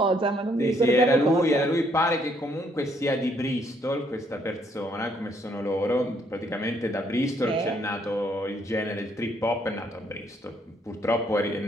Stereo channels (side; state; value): both; normal; correlation 0.69